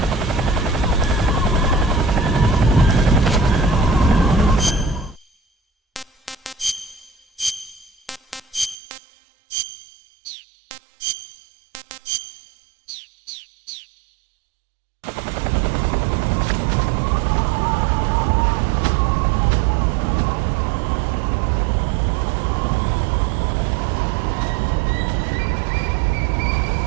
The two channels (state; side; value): drops out; left; at 8.8 s